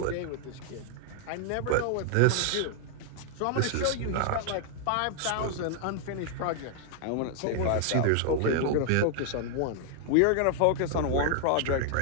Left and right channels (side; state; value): both; different; correlation 0.00